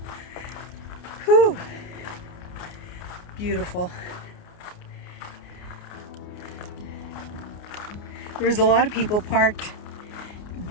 Whew. Beautiful. There's a lot of people parked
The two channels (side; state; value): right; late; 29 ms